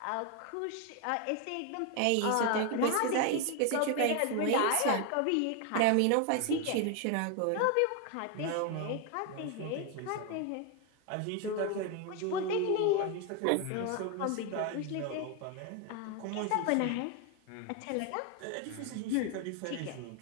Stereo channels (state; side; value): different; both; correlation 0.01